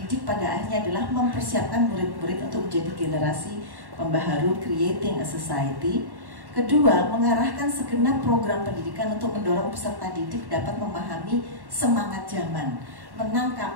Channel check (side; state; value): left; late; 1.1 ms